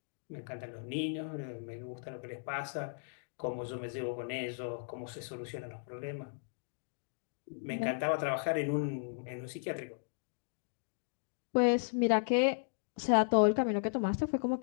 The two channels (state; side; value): silent; right; digital silence